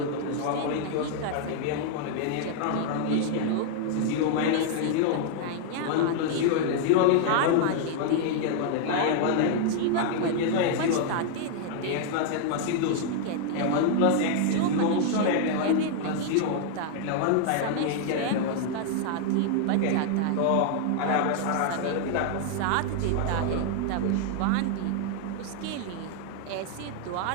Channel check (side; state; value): both; different; correlation 0.00